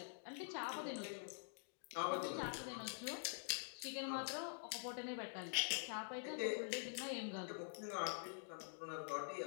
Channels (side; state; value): right; silent; digital silence